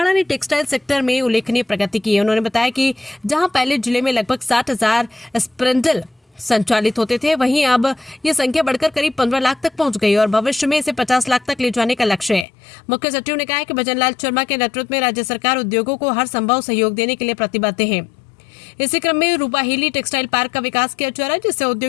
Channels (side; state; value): right; drops out; at 12.5 s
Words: ने टेक्सटाइल सेक्टर में उल्लेखनीय प्रगति की है। उन्होंने बताया कि जहां पहले जिले में लगभग 60,000 स्प्रिंडल संचालित होते थे, वहीं अब ये संख्या बढ़कर करीब 15 लाख तक पहुंच गई और भविष्य में इसे 50 लाख तक ले जाने का लक्ष्य है। मुख्य सचिव ने कहा कि भजनलाल शर्मा के नेतृत्व में राज्य सरकार उद्योगों को हर संभव सहयोग देने के लिए प्रतिबद्ध है। इसी क्रम में रूपाहेली टेक्सटाइल पार्क का विकास किया जा रहा है, जिससे